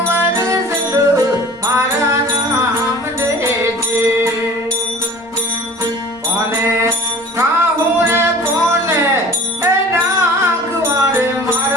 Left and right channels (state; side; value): normal; both; correlation 0.44